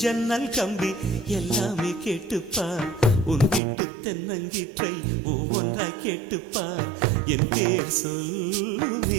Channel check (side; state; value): left; drops out; at 3.6 s